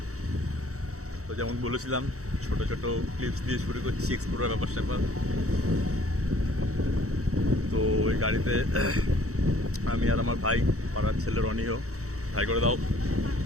তো যেমন বলেছিলাম, ছোট ছোট ক্লিপস দিয়ে শুরু করছি এক্সপ্লোরার ব্যাপার স্যাপার। তো ওই গাড়িতে আমি আর আমার ভাই, পাড়ার ছেলে রনিও, ভাই করে দাও,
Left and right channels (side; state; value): left; late; 0.65 ms